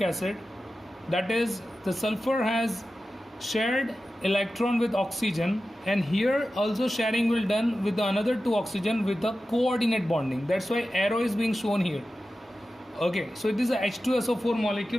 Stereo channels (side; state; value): both; normal; correlation 0.93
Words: acid, that is the sulfur has shared electron with oxygen, and here also sharing will done with the another two oxygen with the coordinate bonding. That's why arrow is being shown here. Okay, so it is a H2SO4